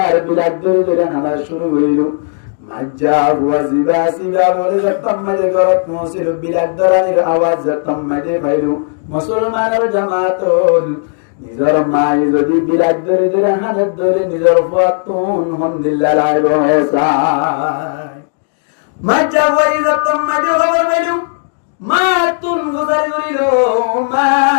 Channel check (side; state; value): right; silent; digital silence